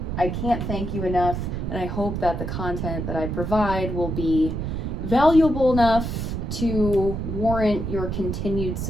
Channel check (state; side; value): noise; right; rumble, 3 dB below the sound